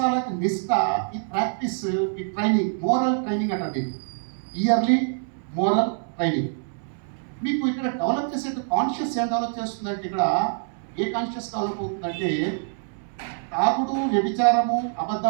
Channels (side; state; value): left; silent; 61 dB below the other